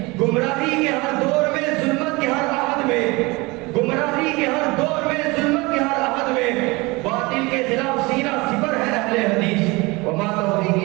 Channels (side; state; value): left; quieter; 24.3 dB